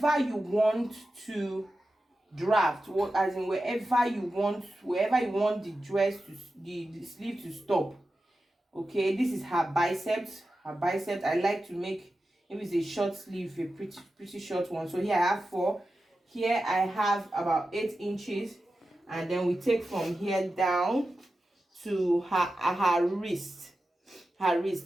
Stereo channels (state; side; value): normal; both; correlation 0.92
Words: you want to draft, as in wherever you want the dress to, the sleeve to stop. Okay, this is her biceps. I like to make, if it's a short sleeve, a pretty short one. So here I have 4. Here I have about 8 inches, and then we take from here down to her wrist. Here